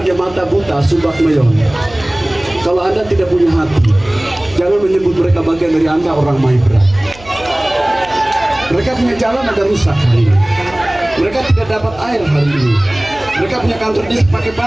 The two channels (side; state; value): right; noise; hum, 21 dB below the sound